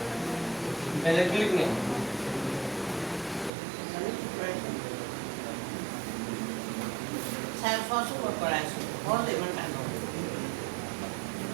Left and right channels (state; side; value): drops out; left; at 3.5 s